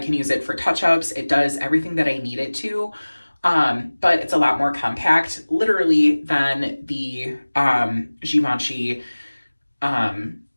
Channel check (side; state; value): both; inverted; correlation -1.00